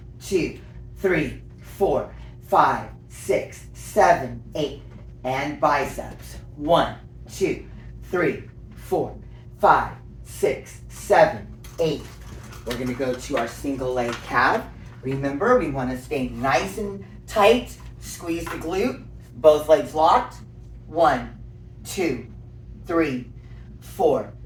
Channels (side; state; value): both; identical; correlation 1.00